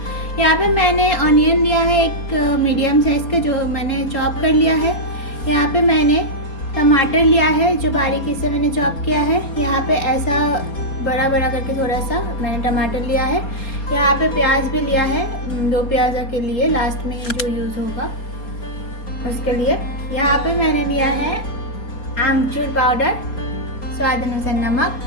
यहाँ पे मैंने ऑनियन लिया है एक मीडियम साइज का, जो मैंने चॉप कर लिया है। यहाँ पे मैंने टमाटर लिया है जो बारीकी से मैंने चॉप किया है। यहाँ पे ऐसा बड़ा बड़ा करके थोड़ा सा मैंने टमाटर लिया है। यहाँ पे प्याज भी लिया है, दो प्याजा के लिए लास्ट में जो यूज़ होगा उसके लिए। यहाँ पे मैंने लिया है आमचूर पाउडर, स्वाद अनुसार नमक,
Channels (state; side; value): late; right; 4.3 ms